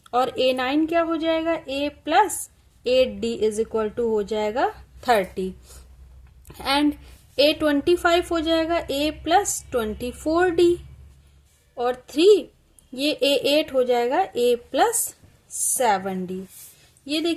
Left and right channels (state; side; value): identical; both; correlation 1.00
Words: और A9 क्या हो जाएगा a plus 8d is equal to हो जाएगा 30 एंड A25 हो जाएगा a प्लस 24d और 3 ये A8 हो जाएगा a प्लस 7d. ये